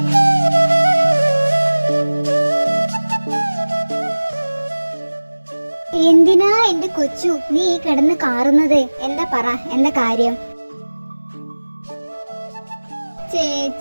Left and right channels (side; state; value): both; inverted; correlation -1.00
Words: എന്തിനാ എന്റെ കൊച്ചു നീ കിടന്ന് കാറുന്നത്? എന്താ പറ, എന്താ കാര്യം?